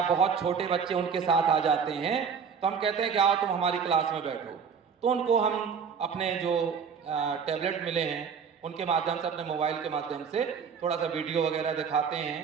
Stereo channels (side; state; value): left; quieter; 6.4 dB